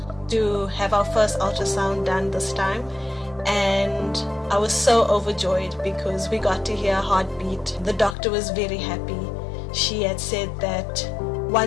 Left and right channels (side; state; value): right; drops out; at 8.2 s